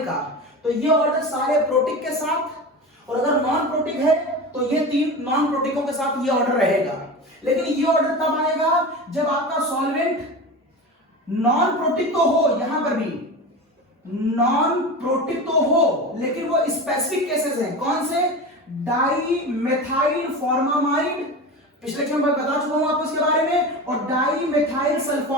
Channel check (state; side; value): normal; both; correlation 0.28